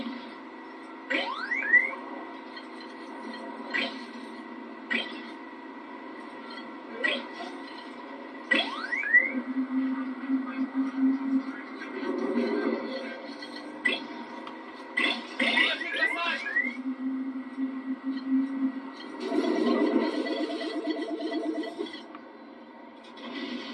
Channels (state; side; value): identical; both; correlation 1.00